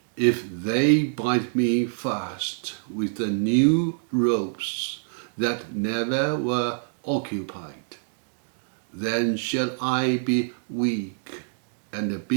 If they bind me fast with the new ropes that never were occupied, then shall I be weak, and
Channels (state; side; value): silent; left; digital silence